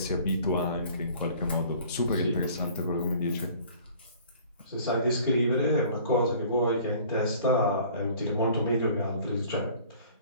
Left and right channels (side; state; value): both; inverted; correlation -0.51